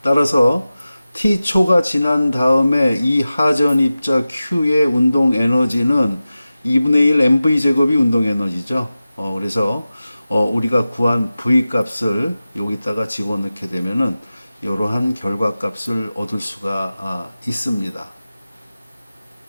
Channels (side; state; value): both; inverted; correlation -0.95